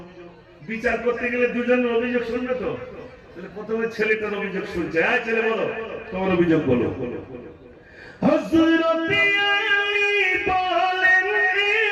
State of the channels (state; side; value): identical; both; correlation 1.00